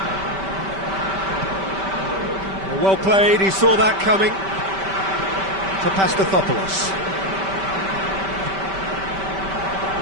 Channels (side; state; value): left; late; 5.2 ms